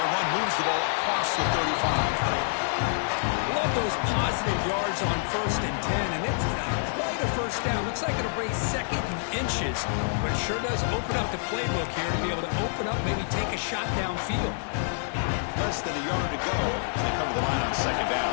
run moves the ball across the 35. love those positive yards on 1st and 10, and it's not quite a first down. Looks like it'll bring 2nd and inches, but it sure does open up the playbook here to be able to open up, maybe take a shot downfield. Less than a yard to go as they cover the line on 2nd down.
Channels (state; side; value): silent; right; digital silence